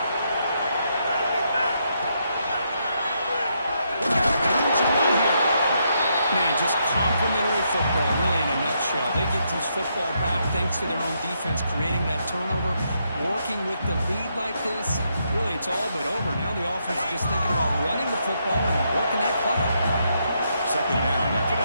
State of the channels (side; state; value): both; inverted; correlation -0.78